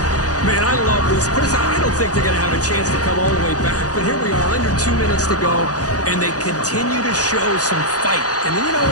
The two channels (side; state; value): right; late; 0.67 ms